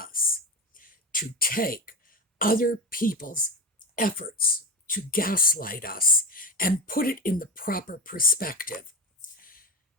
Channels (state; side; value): normal; both; correlation 0.22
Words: to take other people's efforts to gaslight us and put it in the proper perspective.